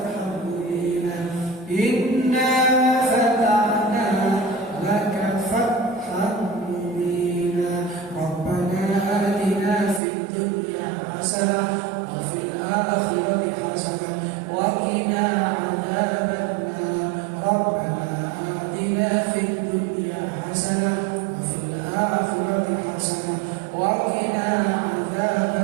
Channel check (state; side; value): drops out; left; at 10.0 s